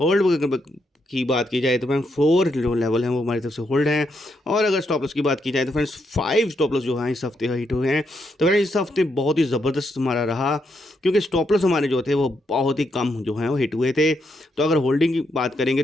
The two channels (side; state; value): both; normal; correlation 0.79